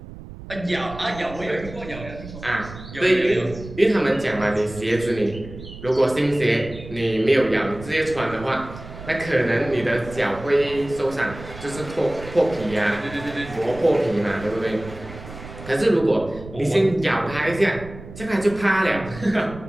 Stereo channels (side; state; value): right; noise; rumble, 14 dB below the sound